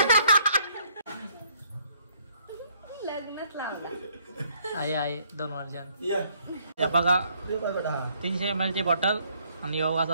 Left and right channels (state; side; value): inverted; both; correlation -0.66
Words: लग्नच लावला आई 2 वर्षां या बघा 300 ml ची बॉटल आणि